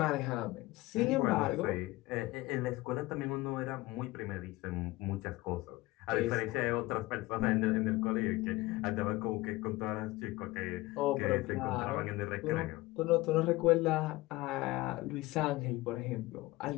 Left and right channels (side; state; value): right; quieter; 19.6 dB